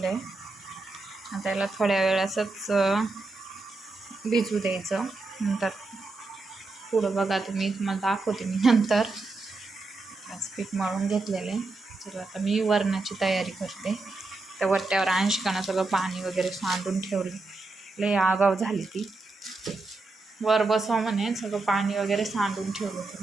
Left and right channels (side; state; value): left; quieter; 3.4 dB